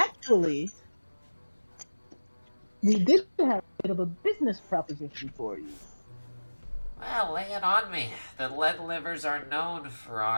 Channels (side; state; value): both; inverted; correlation -1.00